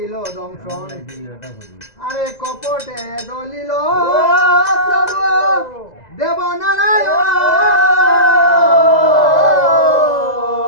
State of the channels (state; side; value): late; right; 2.0 ms